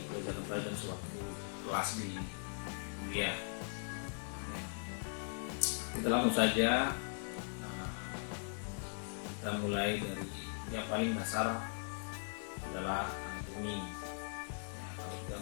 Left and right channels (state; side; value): silent; right; digital silence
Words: pelajaran-pelajaran sewaktu kelas di kuliah. Ya. Kita langsung saja, kita mulai dari yang paling dasar adalah anatomi. Ya, kalau kita